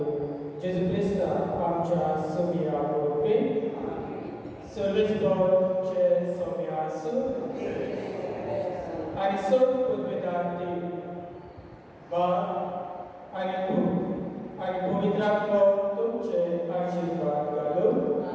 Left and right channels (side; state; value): both; identical; correlation 1.00